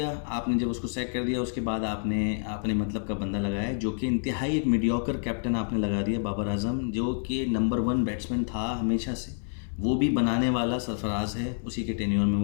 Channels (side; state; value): right; silent; digital silence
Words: आपने जब उसको सैक कर दिया उसके बाद आपने आपने मतलब का बंदा लगाया, जो कि इंतहाई एक मीडियोकर कैप्टन आपने लगा दिया, बाबर आजम, जो कि नंबर 1 बैट्समैन था हमेशा से। वो भी बनाने वाला सरफराज है, उसी के टेन्योर में